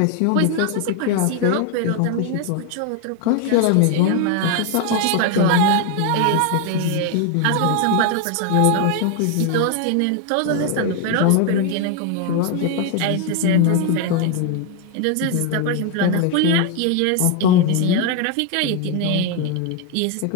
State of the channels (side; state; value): both; different; correlation 0.01